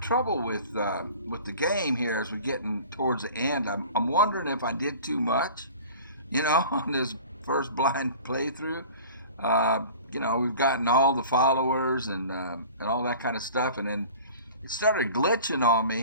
with the game here as we're getting towards the end. I'm wondering if I did too much, you know, on this first blind playthrough. You know, we've gotten all the followers and all that kind of stuff, and then it started glitching on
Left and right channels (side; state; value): both; inverted; correlation -0.42